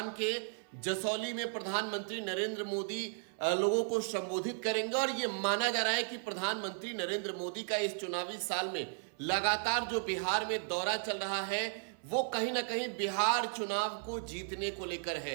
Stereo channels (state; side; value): silent; left; 54 dB below the other